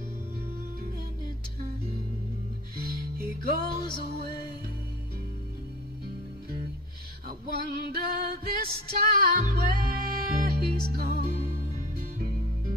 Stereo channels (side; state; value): both; normal; correlation 0.38